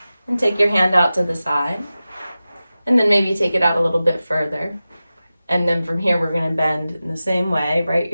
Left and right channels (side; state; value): both; inverted; correlation -0.95